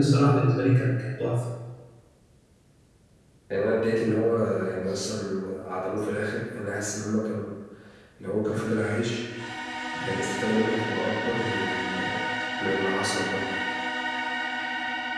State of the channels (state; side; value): identical; both; correlation 1.00